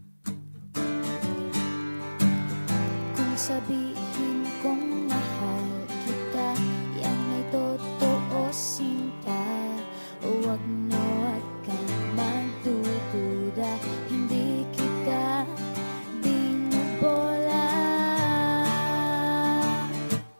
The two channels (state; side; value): inverted; both; correlation -1.00